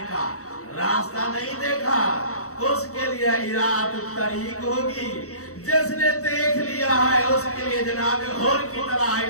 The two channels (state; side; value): late; right; 0.65 ms